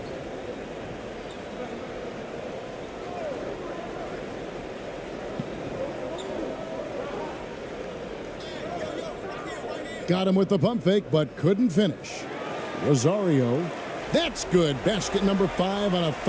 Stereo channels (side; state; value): both; identical; correlation 1.00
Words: Got him with the pump fake, but couldn't finish. Rosario. That's good. Basket number 5 on a